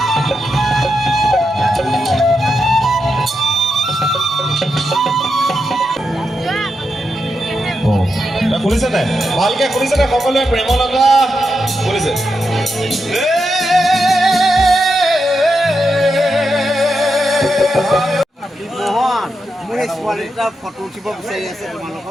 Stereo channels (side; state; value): both; normal; correlation 0.86